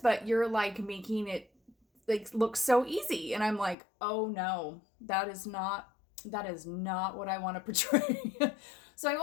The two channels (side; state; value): right; drops out; at 3.8 s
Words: you're like making it like look so easy." And I'm like, "Oh no, that is not what I want to portray." So I